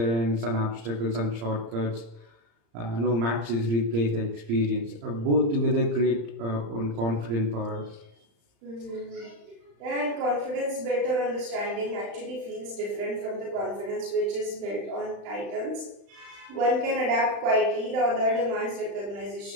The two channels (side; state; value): left; late; 35 ms